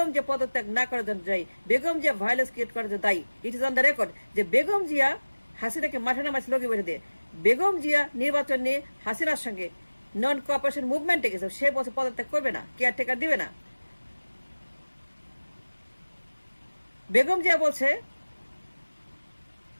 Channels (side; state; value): both; inverted; correlation -1.00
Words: জিয়া পদত্যাগ না করার জন্য দায়ী, বেগম জিয়া ভায়োলেন্স ক্রিয়েট করার জন্য দায়ী। It is on the record যে বেগম জিয়া হাসিনাকে মাঠে নামাইছে লগি বৈঠা দিয়ে। বেগম জিয়া নির্বাচন নিয়ে হাসিনার সঙ্গে নন কোঅপারেশন মুভমেন্টে গেছে, সে বছর পদত্যাগ করবে না, কেয়ারটেকার দিবে না। বেগম জিয়া বলছে